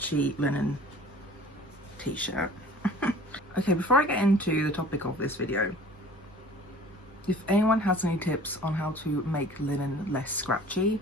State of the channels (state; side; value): normal; both; correlation 0.47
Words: linen t-shirt. Okay, before I get into the topic of this video, if anyone has any tips on how to make linen less scratchy,